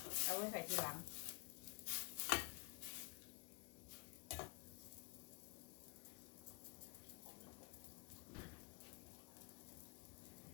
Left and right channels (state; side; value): quieter; right; 30.3 dB